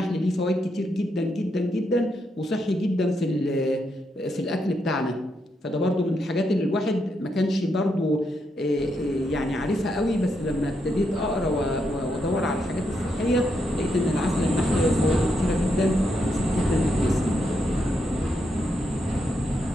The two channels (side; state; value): both; normal; correlation 0.81